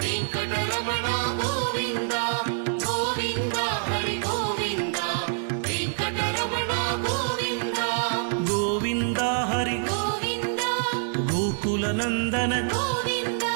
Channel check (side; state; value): left; silent; digital silence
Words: వెంకటరమణ గోవింద గోవింద హరి గోవింద వెంకటరమణ గోవింద గోవింద హరి గోవింద గోకుల నందన గోవింద